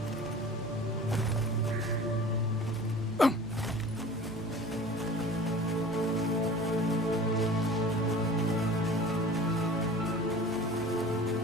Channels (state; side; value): normal; both; correlation 0.41